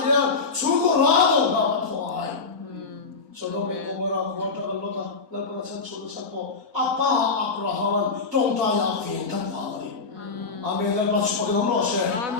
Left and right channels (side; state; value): right; quieter; 4.5 dB